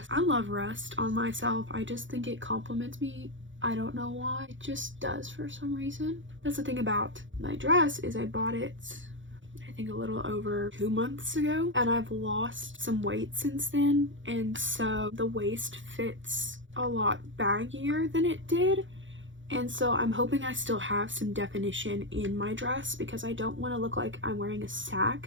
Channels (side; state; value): left; late; 0.56 ms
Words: I love rust on myself. I just think it compliments me. I don't know why. It just does for some reason. That's the thing about my dress, is I bought it a little over 2 months ago, and I've lost some weight since then, and so the waist fits a lot baggier than it did, and so I'm hoping I still have some definition in my dress because I don't want to look like I'm wearing a